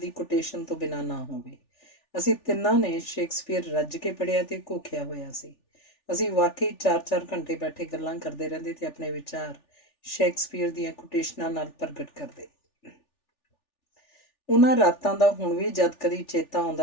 ਕੋਟੇਸ਼ਨ ਤੋਂ ਬਿਨਾਂ ਨਾ ਹੋਵੇ। ਅਸੀਂ ਤਿੰਨਾਂ ਨੇ ਸ਼ੇਕਸਪੀਅਰ ਰੱਜ ਕੇ ਪੜ੍ਹਿਆ ਤੇ ਘੋਖਿਆ ਹੋਇਆ ਸੀ। ਅਸੀਂ ਵਾਕਈ 4-4 ਘੰਟੇ ਬੈਠੇ ਗੱਲਾਂ ਕਰਦੇ ਰਹਿੰਦੇ ਤੇ ਆਪਣੇ ਵਿਚਾਰ ਸ਼ੇਕਸਪੀਅਰ ਦੀਆਂ ਕੋਟੇਸ਼ਨਾਂ ਨਾਲ ਪ੍ਰਗਟ ਕਰਦੇ। ਉਹਨਾਂ ਰਾਤਾਂ ਦਾ ਹੁਣ ਵੀ ਜਦ ਕਦੀ ਚੇਤਾ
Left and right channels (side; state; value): right; late; 3.4 ms